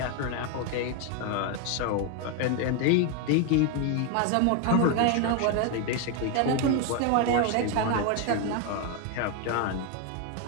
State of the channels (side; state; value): both; different; correlation 0.01